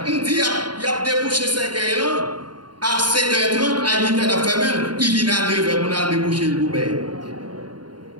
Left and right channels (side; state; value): left; late; 0.71 ms